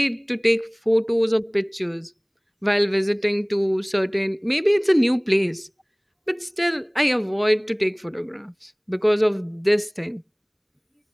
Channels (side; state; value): both; identical; correlation 1.00